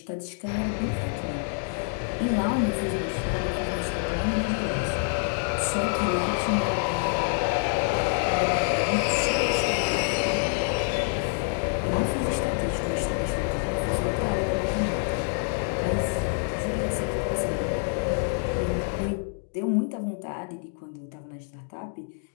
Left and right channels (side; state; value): right; silent; 60 dB below the other